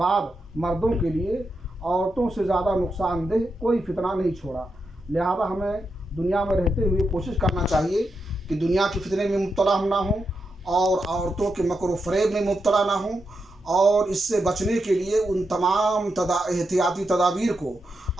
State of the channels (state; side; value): normal; both; correlation 0.85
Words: بعد مردوں کے لیے عورتوں سے زیادہ نقصان دہ کوئی فتنہ نہیں چھوڑا۔ لہذا ہمیں دنیا میں رہتے ہوئے کوشش کرنا چاہیے کہ دنیا کے فتنے میں مبتلا ہم نہ ہوں اور عورتوں کے مکر و فریب میں مبتلا نہ ہوں، اور اس سے بچنے کے لیے ان تمام احتیاطی تدابیر کو